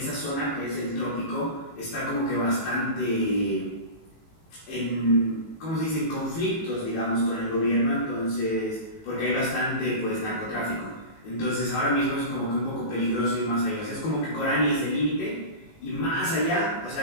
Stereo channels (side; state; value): right; late; 18 ms